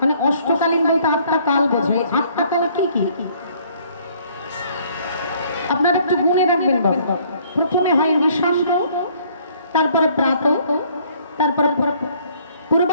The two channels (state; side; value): inverted; both; correlation -0.61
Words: মানে অষ্টকালীন বলতে 8টা কাল বোঝায়। 8টা কাল কি কি আপনারা একটু গুনে রাখবেন বাবা। প্রথমে হয় নিশান্ত, তারপরে প্রাত, তারপরে